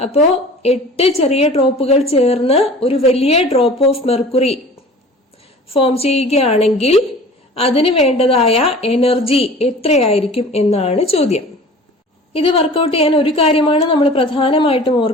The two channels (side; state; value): both; normal; correlation 0.43